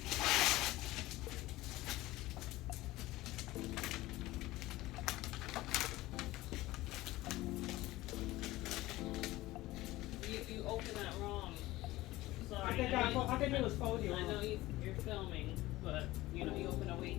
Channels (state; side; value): quieter; right; 18.0 dB